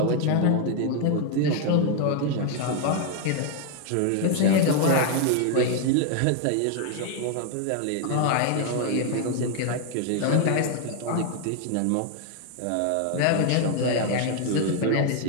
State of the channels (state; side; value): different; both; correlation 0.01